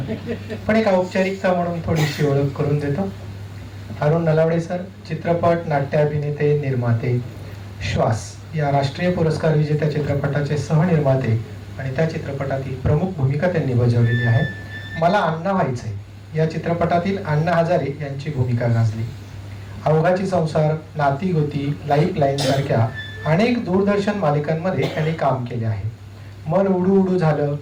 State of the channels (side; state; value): both; identical; correlation 1.00